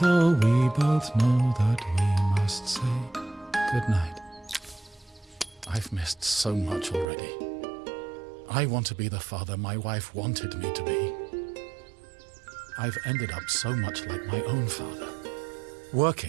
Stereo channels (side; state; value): left; drops out; at 7.1 s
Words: we both know that we must say goodnight. I've missed so much already. I want to be the father my wife wanted me to be. I've ended up so much like my own father,